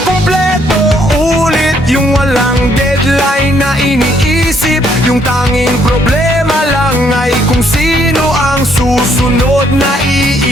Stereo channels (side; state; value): both; normal; correlation 0.69